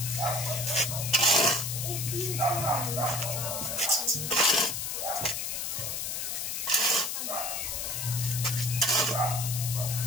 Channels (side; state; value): left; noise; hiss, 3 dB below the sound